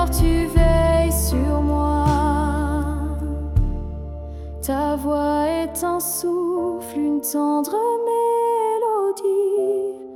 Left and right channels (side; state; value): both; identical; correlation 1.00